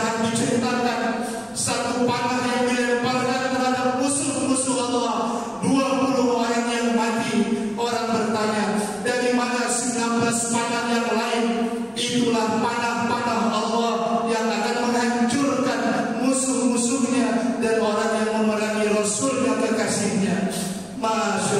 diceritakan satu panah yang dilemparkan terhadap musuh-musuh Allah, 20 orang yang mati. Orang bertanya, dari mana 19 panah yang lain? Itulah panah-panah Allah yang akan menghancurkan musuh-musuhnya dan orang yang memerangi Rasulnya, kekasihnya.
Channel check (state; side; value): identical; both; correlation 1.00